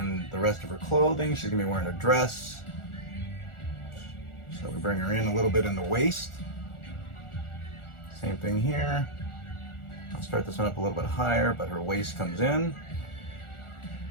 the rest of her clothing. She's going to be wearing a dress. So we bring her in a little bit in the waist. Same thing here. I'll start this one up a little bit higher, but her waist comes in.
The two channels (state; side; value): late; right; 1.4 ms